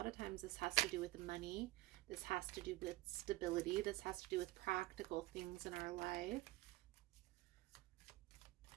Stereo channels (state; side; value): quieter; left; 18.7 dB